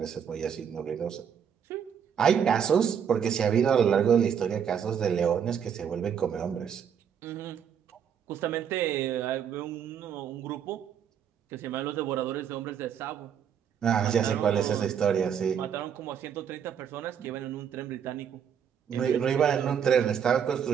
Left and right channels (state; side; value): quieter; left; 8.0 dB